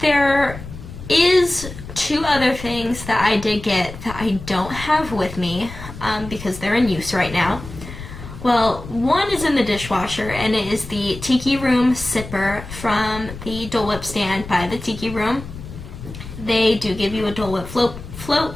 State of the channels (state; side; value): noise; left; rumble, 12 dB below the sound